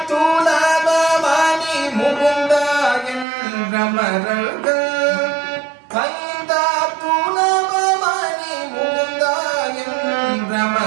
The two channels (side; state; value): left; drops out; at 3.2 s